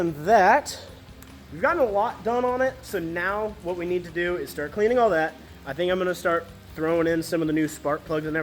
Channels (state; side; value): identical; both; correlation 1.00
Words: that, we've gotten a lot done on it, so now what we need to do is start cleaning all that. I think I'm going to start throwing in some of the new spark plugs and